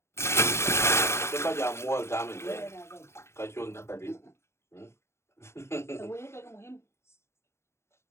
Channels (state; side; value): late; right; 0.13 ms